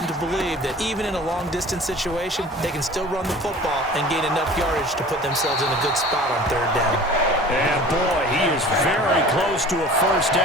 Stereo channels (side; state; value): both; normal; correlation 0.43